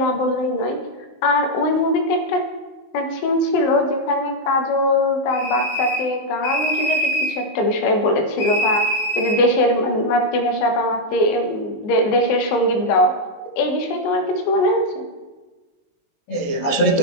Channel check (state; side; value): late; right; 19 ms